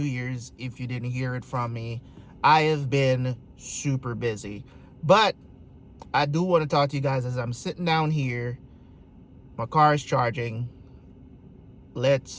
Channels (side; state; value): both; identical; correlation 1.00